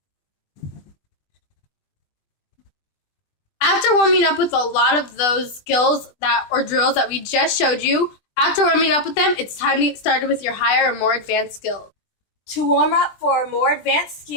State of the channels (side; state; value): right; late; 20 ms